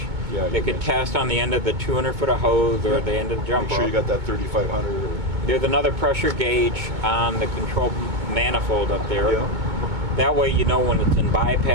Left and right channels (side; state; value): left; late; 2.2 ms